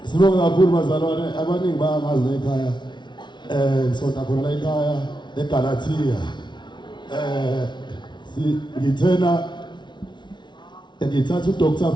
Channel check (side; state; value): right; late; 0.22 ms